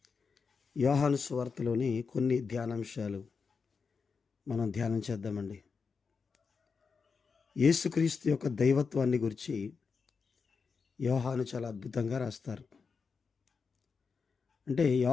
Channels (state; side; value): quieter; right; 5.3 dB